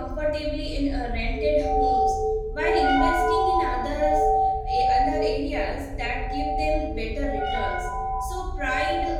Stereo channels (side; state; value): both; identical; correlation 1.00